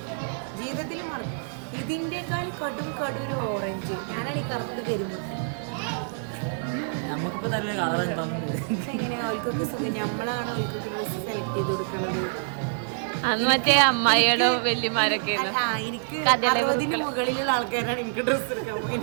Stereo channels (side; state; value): left; silent; digital silence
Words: ജീവിതത്തിൽ മറക്കും. ഇതിന്റെക്കാൾ കടും ഒരു ഓറഞ്ച്. ഞാനാണ് ഈ കറുത്ത് കരിമുട്ടി. നമുക്കിപ്പോ നല്ല കളർ എങ്ങനെയാ അവൾക്കൊക്കെ സുഖം. നമ്മളാണ് അവൾക്കൊക്കെ ഡ്രസ്സ് സെലക്ട് ചെയ്ത് കൊടുക്കുന്നത്. അന്ന് മറ്റേ അമ്മായിയുടെ വല്യമാരൊക്കെ എനിക്ക് 60 മുകളിലുള്ള ആൾക്കാരാണ് എനിക്ക് ഡ്രസ്സ് എടുക്കാൻ